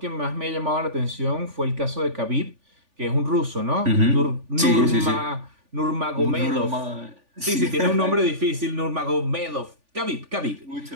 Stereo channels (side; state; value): left; late; 3.4 ms